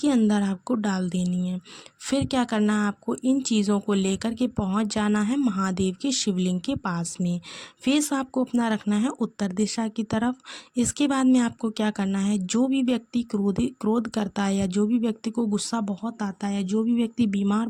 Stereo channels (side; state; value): both; identical; correlation 1.00